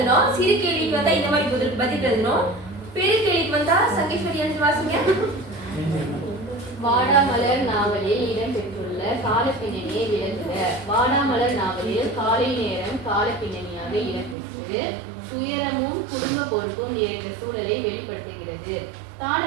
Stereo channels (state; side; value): drops out; left; at 14.4 s